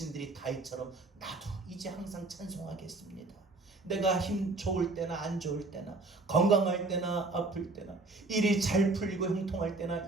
다윗처럼 나도 이제 항상 찬송하겠습니다. 내가 힘 좋을 때나 안 좋을 때나, 건강할 때나 아플 때나, 일이 잘 풀리고 형통할 때나,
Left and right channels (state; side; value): quieter; left; 3.3 dB